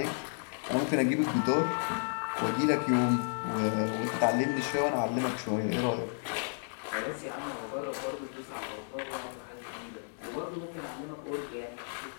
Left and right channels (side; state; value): right; silent; digital silence